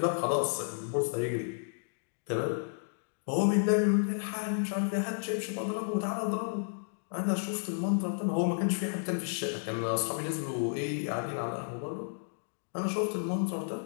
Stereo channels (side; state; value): right; silent; digital silence